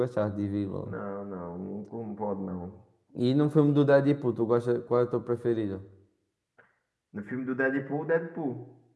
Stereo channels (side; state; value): both; identical; correlation 1.00